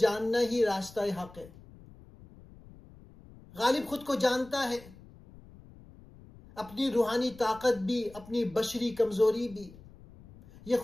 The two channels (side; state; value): left; noise; rumble, 21 dB below the sound